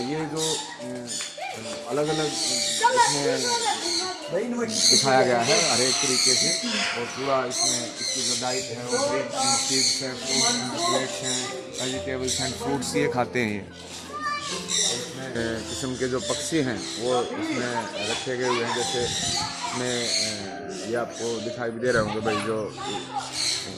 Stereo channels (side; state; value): both; identical; correlation 1.00